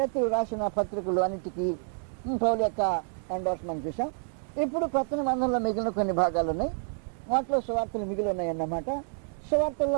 రాసిన పత్రికలు అన్నిటికీ పౌలు యొక్క ఎండార్స్మెంట్ చూసాం. ఇప్పుడు కొత్త నిబంధనలో మిగిలిన కొన్ని భాగాలు ఉన్నాయి. వాటిలో సువార్తలు మిగిలి ఉన్నాయి అన్నమాట.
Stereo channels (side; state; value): left; silent; 59 dB below the other